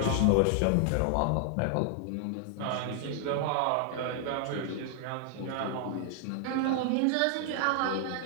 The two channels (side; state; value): both; different; correlation 0.00